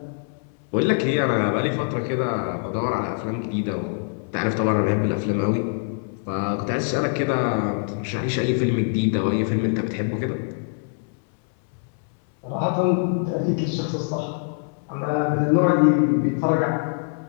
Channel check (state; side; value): silent; right; 63 dB below the other